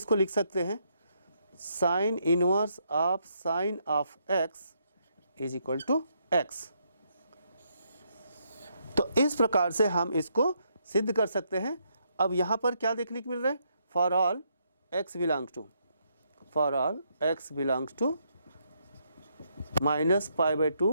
लिख सकते हैं sine inverse of sine of x is equal to x। तो इस प्रकार से हम इसको सिद्ध कर सकते हैं। अब यहाँ पर क्या देखने को मिल रहा है, for all x belongs to, for all x belongs to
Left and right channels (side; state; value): both; inverted; correlation -0.76